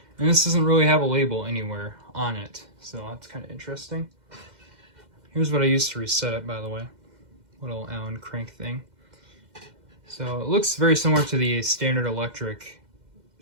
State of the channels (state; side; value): late; left; 2.1 ms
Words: and this doesn't really have a label anywhere on it, so that's kind of interesting. Here's what I used to reset it, by the way. Little Allen crank thing. So it looks very similar to the standard electric